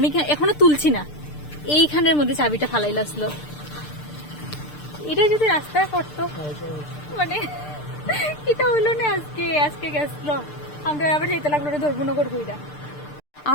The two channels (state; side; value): late; right; 6.7 ms